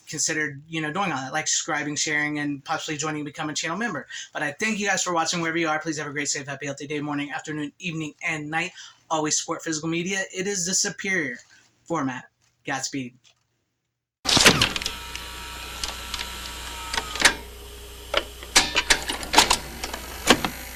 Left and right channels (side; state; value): both; identical; correlation 1.00